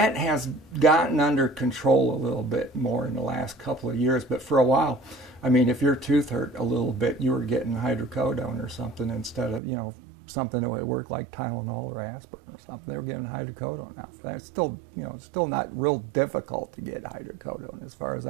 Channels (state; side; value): drops out; left; at 9.6 s